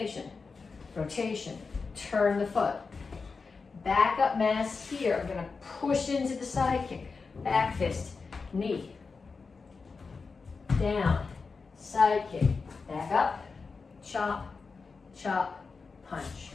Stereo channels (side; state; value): right; quieter; 4.6 dB